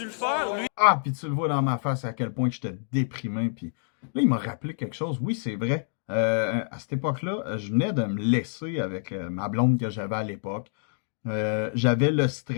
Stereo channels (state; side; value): silent; right; digital silence